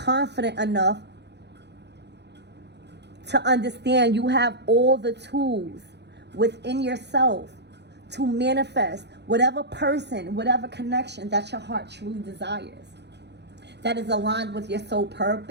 enough to understand you have all the tools within yourself to manifest whatever person, whatever connection that your heart truly desires, that is aligned with your soul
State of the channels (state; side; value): late; left; 0.50 ms